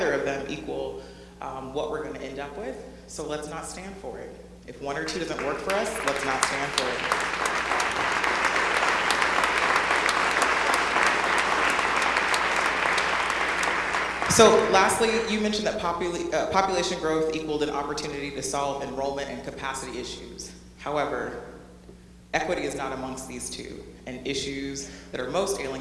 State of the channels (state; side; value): identical; both; correlation 1.00